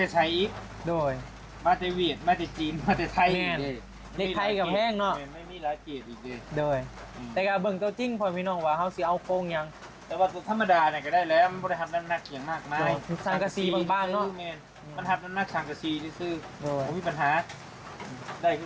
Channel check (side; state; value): both; identical; correlation 1.00